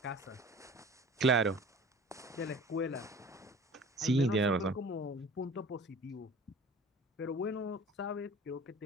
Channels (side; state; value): both; normal; correlation 0.44